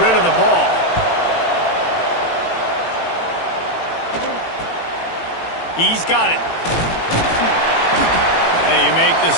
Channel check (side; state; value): right; late; 18 ms